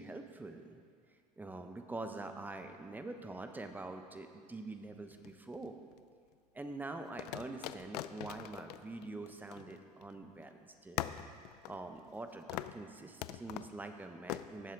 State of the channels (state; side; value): normal; both; correlation 0.54